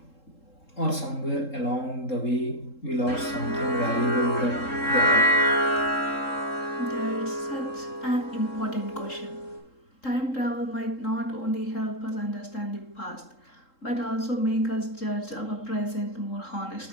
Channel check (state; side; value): late; right; 3.7 ms